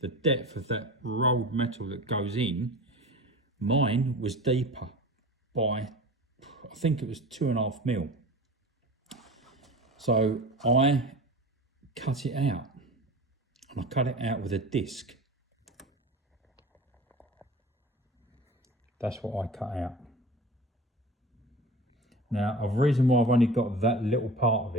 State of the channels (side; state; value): both; normal; correlation 0.35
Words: the depth of that rolled metal that goes in, mine was deeper by, I think it was 2.5 mil. So I cut it out, and I cut it out with a disc. That's what I cut out. Now, the reason why I've only got that little part of